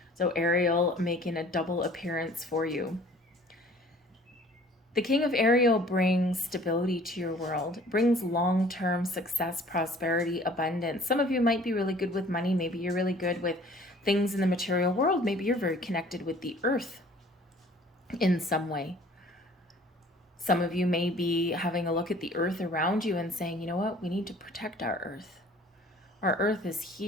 So Ariel making a double appearance for you. The King of Ariel brings stability to your world, brings long-term success, prosperity, abundance. Some of you might be really good with money. Maybe you're really good with things in the material world. Maybe you're very connected with the earth in some way. Some of you may be having a look at the earth around you and saying, you know what, we need to protect our earth. Our earth is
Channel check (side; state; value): both; normal; correlation 0.52